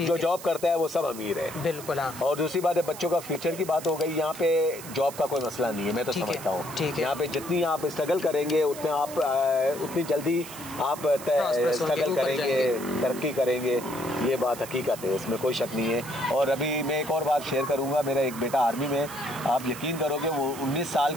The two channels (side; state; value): right; noise; hiss, 14 dB below the sound